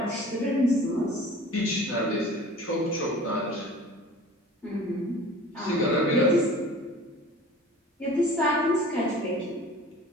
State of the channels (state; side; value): normal; both; correlation 0.43